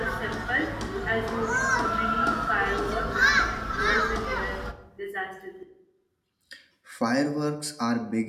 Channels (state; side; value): identical; both; correlation 1.00